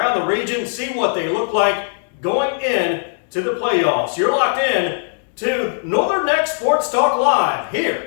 the region, see what they look like going in to the playoffs. You're locked in to Northern Neck Sports Talk Live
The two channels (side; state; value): right; silent; 67 dB below the other